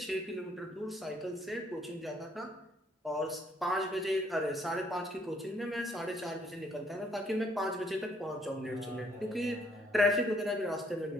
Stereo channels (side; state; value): both; normal; correlation 0.66